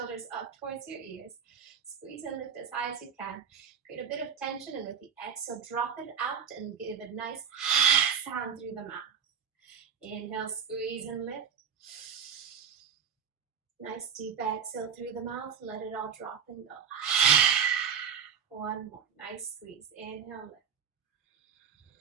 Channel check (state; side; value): quieter; left; 7.4 dB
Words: up towards your ears. Squeeze and lift as high as you can. Create a bit of tension, and with the exhale, drop it out and give a nice sound through the mouth. Inhale, squeeze and lift. Nice deep exhale through the mouth. Let it all drop and go. One more. Nice squeeze. Inhale, lift.